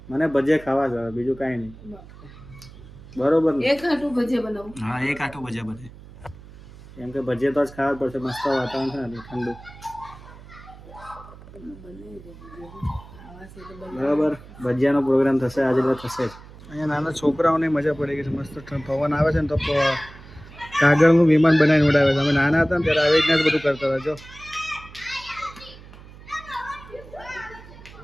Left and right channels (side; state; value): right; noise; hum, 19 dB below the sound